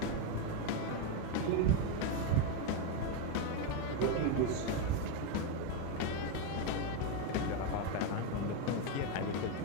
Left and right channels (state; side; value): different; both; correlation 0.03